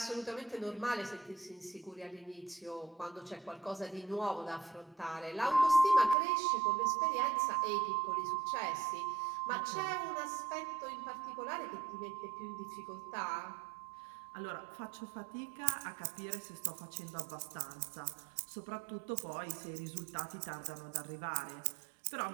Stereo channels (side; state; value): left; drops out; at 6.2 s